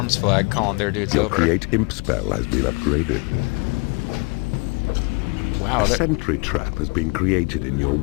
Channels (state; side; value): quieter; right; 30.9 dB